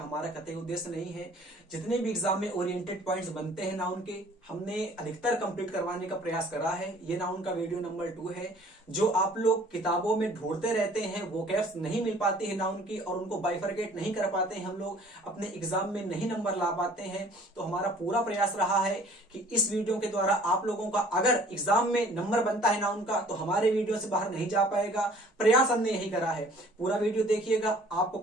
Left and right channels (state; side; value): normal; both; correlation 0.53